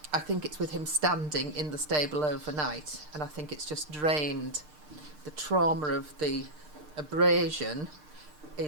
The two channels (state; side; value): late; left; 6.6 ms